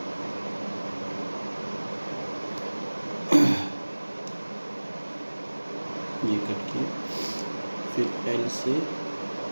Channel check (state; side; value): inverted; both; correlation -1.00